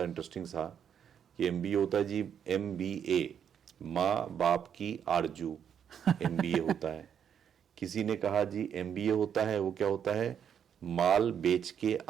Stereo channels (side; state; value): left; quieter; 8.4 dB